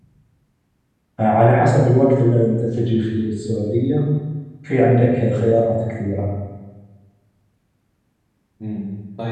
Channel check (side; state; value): both; identical; correlation 1.00